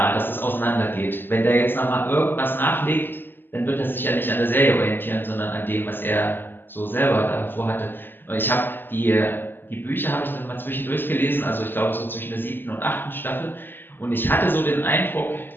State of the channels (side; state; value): right; late; 0.096 ms